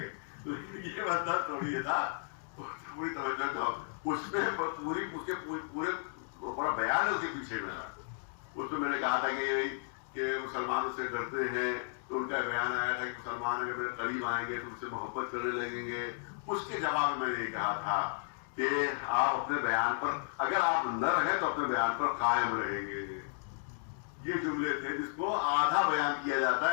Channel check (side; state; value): right; silent; digital silence